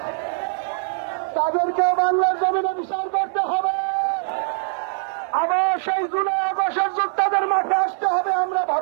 তাদেরকে বাংলার জমিনে বিচার করতে হবে। আবার সেই জুলাই আগস্টের যোদ্ধাদের মাঠে আসতে হবে আমরা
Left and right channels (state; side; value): silent; left; 59 dB below the other